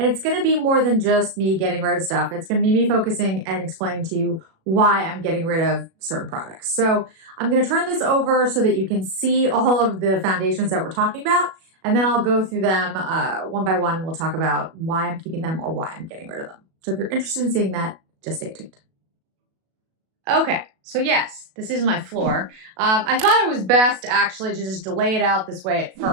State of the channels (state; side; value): late; left; 37 ms